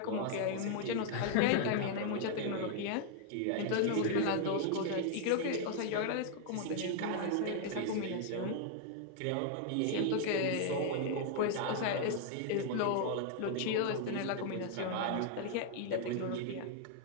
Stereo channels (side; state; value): both; different; correlation 0.00